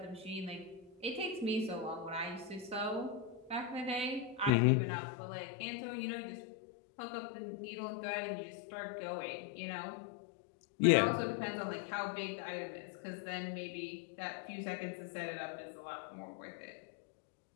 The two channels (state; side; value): drops out; right; at 4.5 s